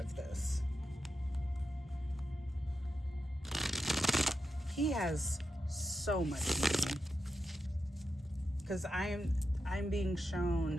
this. He has so much money. Because I'm being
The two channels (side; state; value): both; normal; correlation 0.87